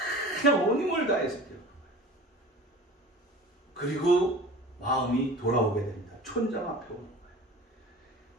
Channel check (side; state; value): both; normal; correlation 0.39